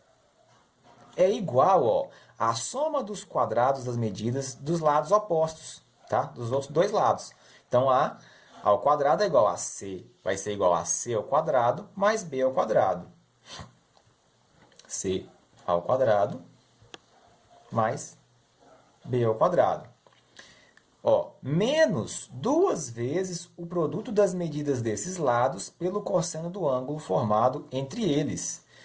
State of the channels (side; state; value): both; identical; correlation 1.00